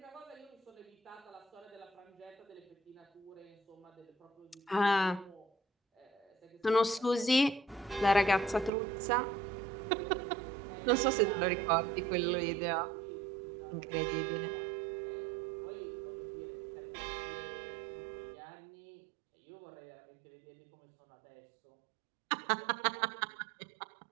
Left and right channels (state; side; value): drops out; left; at 8.7 s